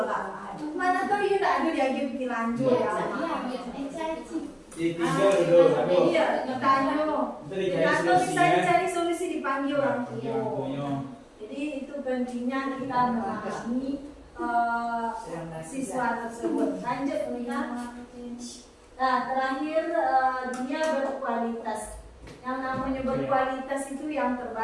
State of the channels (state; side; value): identical; both; correlation 1.00